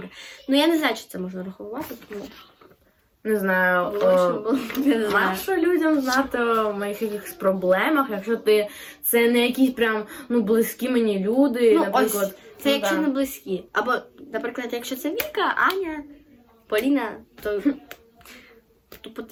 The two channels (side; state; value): both; identical; correlation 1.00